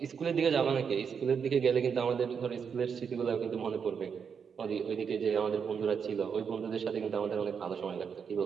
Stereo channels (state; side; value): quieter; left; 6.7 dB